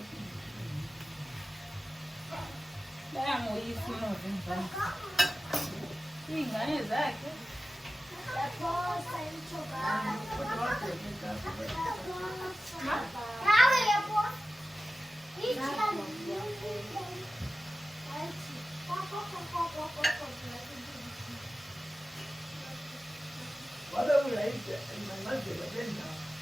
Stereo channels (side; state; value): both; normal; correlation 0.95